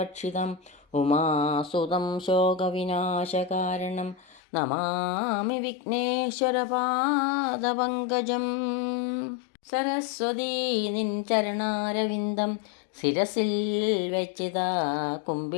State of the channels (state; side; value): drops out; right; at 4.4 s